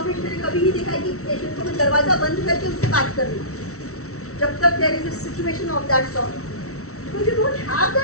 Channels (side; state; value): right; late; 0.64 ms